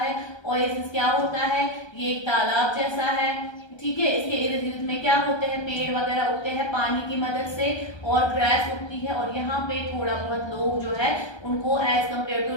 ओएसिस क्या होता है, ये एक तालाब जैसा है, ठीक है। इसके इर्द गिर्द में क्या होते हैं, पेड़ वगैरह उगते हैं पानी की मदद से, और ग्रास उगती है, और यहाँ पे थोड़ा बहुत लोग जो है उनको एज कम्पेयर टू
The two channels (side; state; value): right; late; 1.3 ms